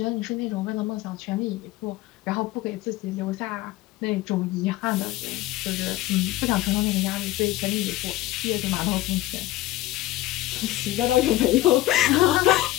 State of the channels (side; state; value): right; quieter; 16.1 dB